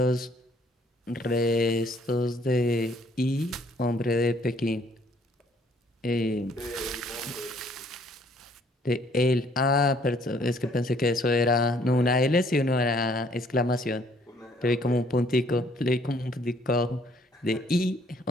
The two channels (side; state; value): both; normal; correlation 0.62